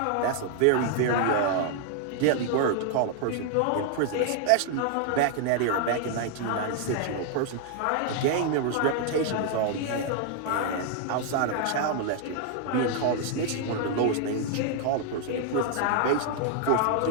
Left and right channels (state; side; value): different; both; correlation 0.00